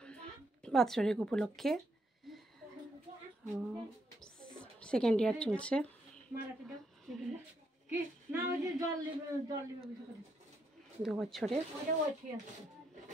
বাৎসরিক উপলক্ষে। 2nd ইয়ার চলছে। 2 বছরে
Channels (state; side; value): normal; both; correlation 0.77